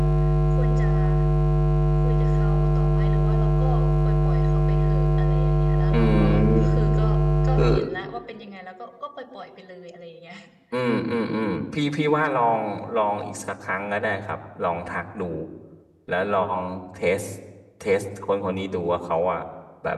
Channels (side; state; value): both; identical; correlation 1.00